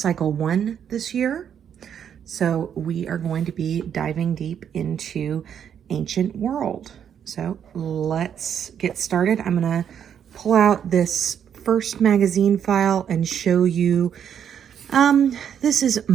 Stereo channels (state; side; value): quieter; left; 8.6 dB